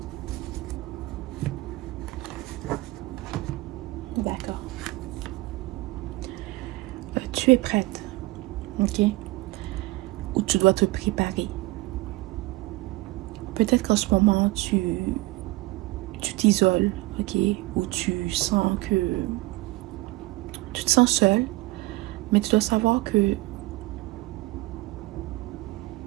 D'accord. Tu es prête, ok? Ou tu dois te préparer. Peut-être qu'en ce moment, tu t'isoles, ok? Ou tu sens que tu te sens seul, mais tu dois savoir que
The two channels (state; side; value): quieter; left; 20.3 dB